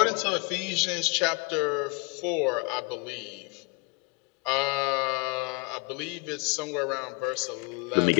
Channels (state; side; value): quieter; right; 31.2 dB